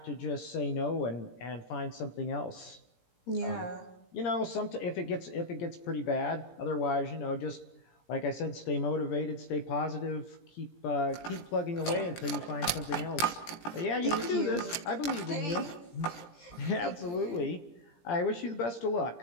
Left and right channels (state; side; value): late; right; 17 ms